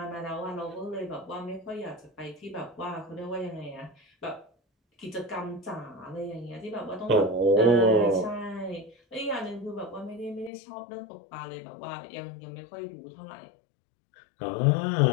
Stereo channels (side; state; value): right; drops out; at 10.5 s